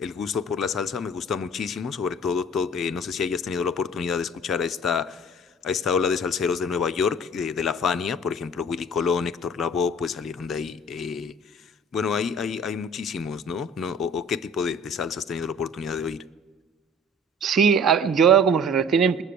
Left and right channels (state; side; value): normal; both; correlation 0.47